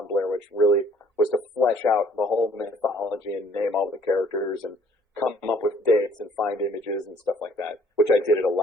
Blair Witch really was to flesh out the whole mythology and name all the characters and come up with dates and find images and stuff like that, which I did at a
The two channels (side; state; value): both; normal; correlation 0.59